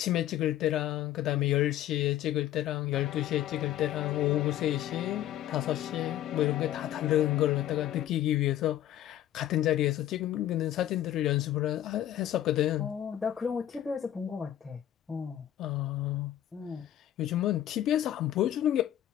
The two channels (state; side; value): quieter; right; 12.2 dB